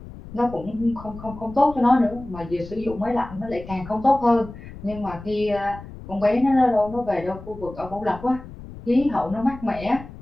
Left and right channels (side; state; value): left; noise; rumble, 15 dB below the sound